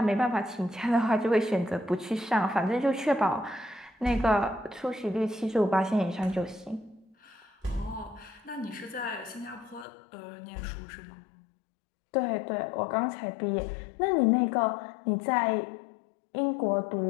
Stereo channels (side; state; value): right; drops out; at 9.9 s